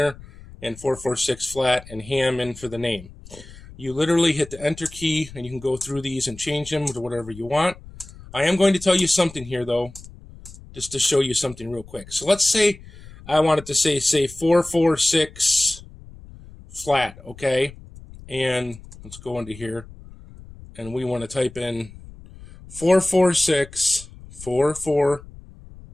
and 446 flat and ham in for the name. You literally hit the enter key and you can go through these and change them to whatever you want. I am going to tell you something here though, just to show you something real quick. So let's say I wanted to say 446 flat, okay? And let's go into here and we want to type in 446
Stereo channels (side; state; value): left; noise; rumble, 18 dB below the sound